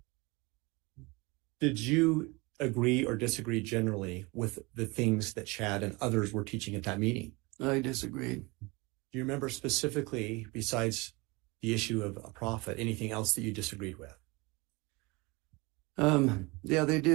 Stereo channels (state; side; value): quieter; left; 25.4 dB